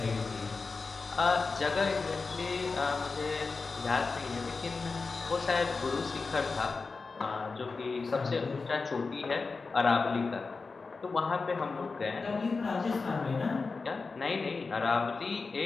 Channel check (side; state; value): right; quieter; 4.3 dB